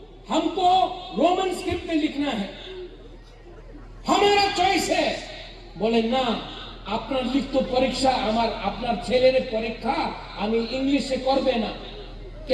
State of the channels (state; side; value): identical; both; correlation 1.00